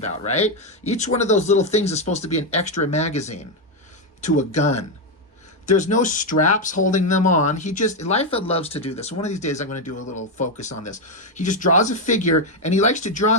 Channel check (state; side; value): normal; both; correlation 0.05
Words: right? Each one of those little things is supposed to be an extra magazine to a gun. There's no straps holding them on. Liefeld loves to do this. One of these days I'm going to do a little focus on this. He just draws a figure, and he likes to draw